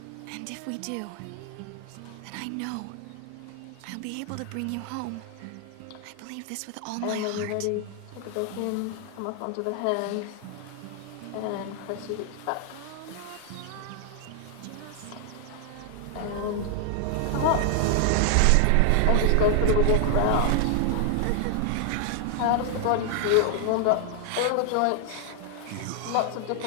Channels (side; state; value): both; different; correlation 0.00